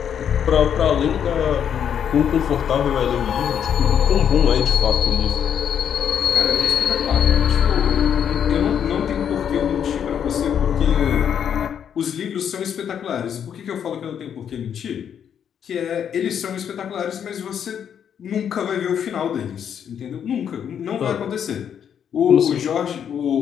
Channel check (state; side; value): quieter; right; 8.5 dB